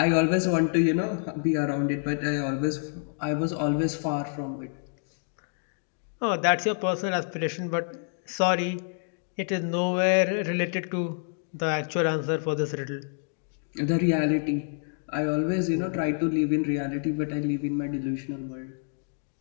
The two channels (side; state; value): right; silent; digital silence